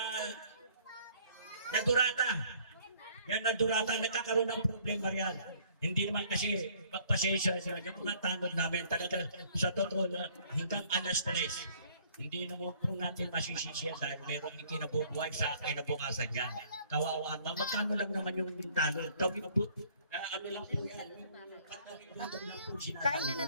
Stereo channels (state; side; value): inverted; both; correlation -0.59